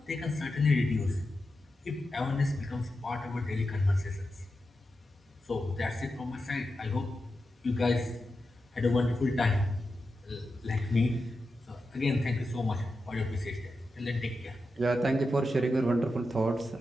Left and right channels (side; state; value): both; normal; correlation 0.89